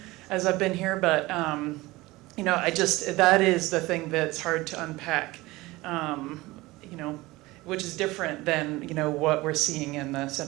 as I've been here. But that is the thing that's hard to unpack. Which is different than what we're seeing in the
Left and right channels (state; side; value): quieter; left; 20.2 dB